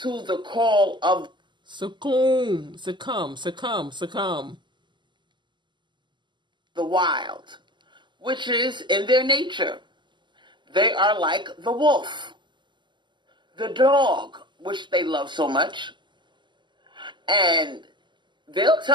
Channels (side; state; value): left; late; 0.22 ms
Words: the call of succumb the wild, which is in their nature. They are like the wolf, the dog, which they love so much, and they'll